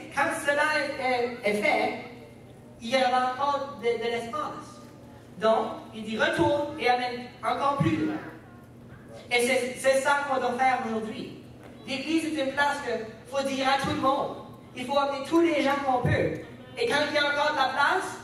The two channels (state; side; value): identical; both; correlation 1.00